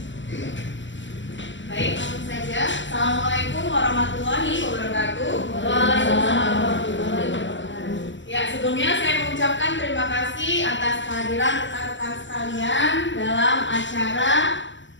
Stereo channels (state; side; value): late; right; 0.54 ms